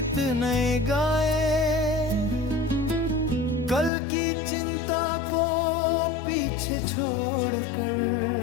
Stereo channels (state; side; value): drops out; right; at 3.9 s